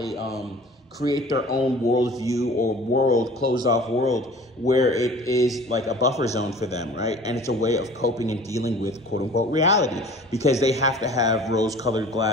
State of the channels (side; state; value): both; normal; correlation 0.45